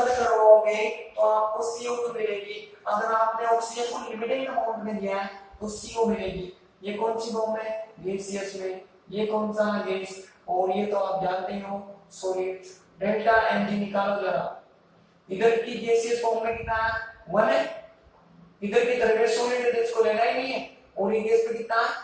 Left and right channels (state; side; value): identical; both; correlation 1.00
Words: करवाओगे तो आपको CO2 मिलेगी। अगर आपने ऑक्सीजन को लिमिटेड अमाउंट में दिया है तो CO मिलेगी। ये कौन सी फॉर्म है, गैसियस में। ये कौन सा गैस, और ये तो आप जानते हो सॉलिड। डेल्टा Mg निकालो जरा। इधर की गैसियस फॉर्म में कितना है, 1 है। इधर की तरफ सॉलिड है तो इसको लेना ही नहीं है। और ये गैस पे कितना